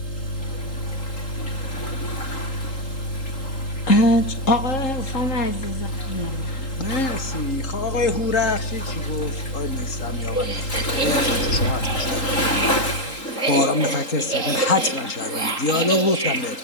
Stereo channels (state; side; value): late; right; 3.8 ms